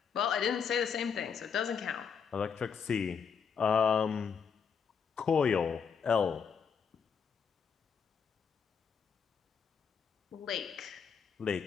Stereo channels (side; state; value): right; quieter; 6.5 dB